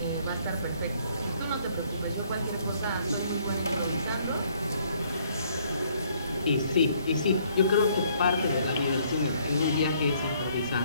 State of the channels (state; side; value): inverted; both; correlation -0.65